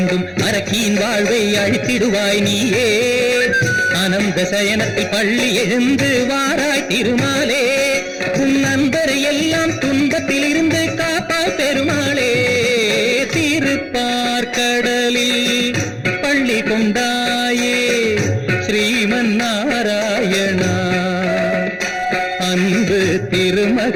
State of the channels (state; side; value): identical; both; correlation 1.00